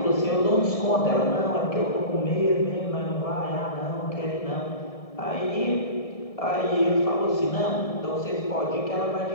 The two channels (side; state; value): right; late; 1.7 ms